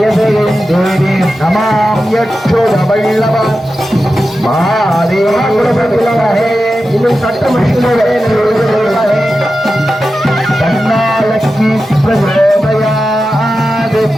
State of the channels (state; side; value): normal; both; correlation 0.92